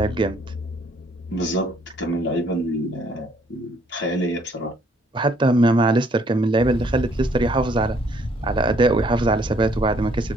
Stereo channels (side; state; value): both; normal; correlation 0.64